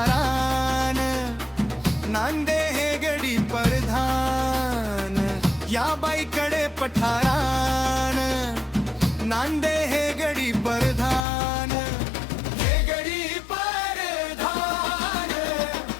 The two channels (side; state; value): right; drops out; at 11.2 s